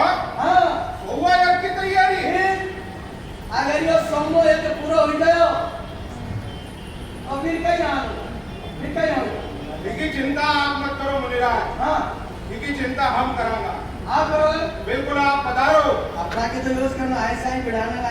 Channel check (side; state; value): both; identical; correlation 1.00